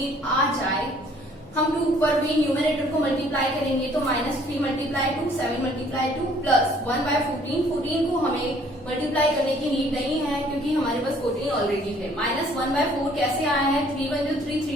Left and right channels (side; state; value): both; normal; correlation 0.59